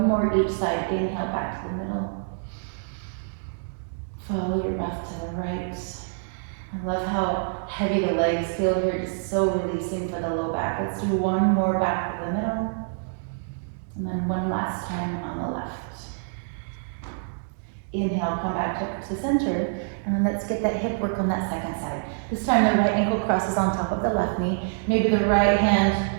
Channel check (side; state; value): left; silent; digital silence